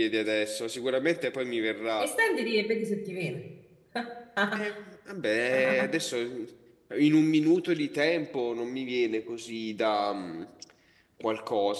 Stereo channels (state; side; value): identical; both; correlation 1.00